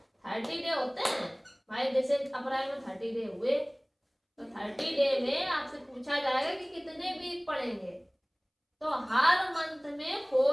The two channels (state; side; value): identical; both; correlation 1.00